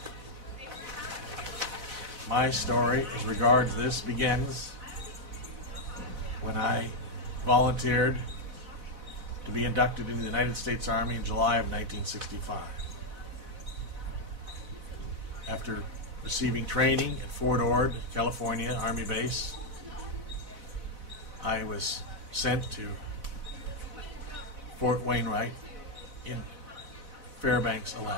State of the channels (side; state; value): left; late; 4.0 ms